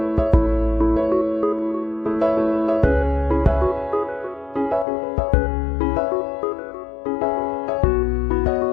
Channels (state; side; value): drops out; right; at 4.9 s